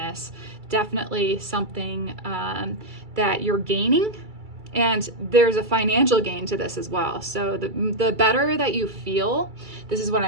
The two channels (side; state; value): left; late; 2.3 ms